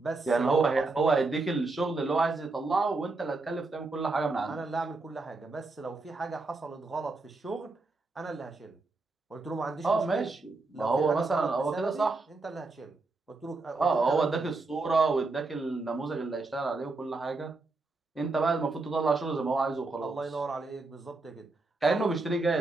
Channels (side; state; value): left; quieter; 3.5 dB